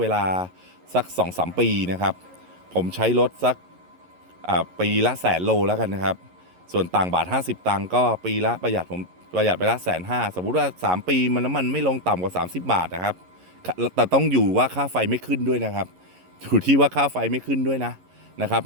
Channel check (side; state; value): left; late; 11 ms